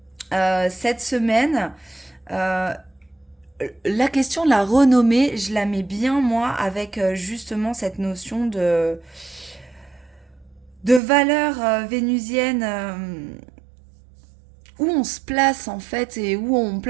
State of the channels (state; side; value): drops out; left; at 11.0 s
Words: Cette semaine, la question de la renommée, je la mets bien, moi, avec justement cette notion de valeur vénusienne, où on se place en fait et où on